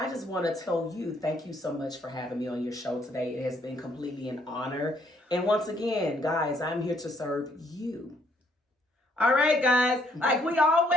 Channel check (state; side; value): normal; both; correlation 0.68